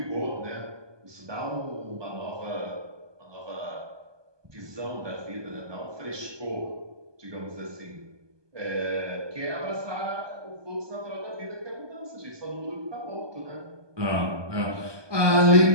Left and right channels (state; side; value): late; left; 1.2 ms